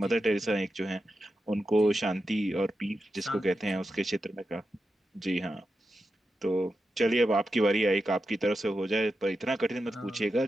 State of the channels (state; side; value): normal; both; correlation 0.89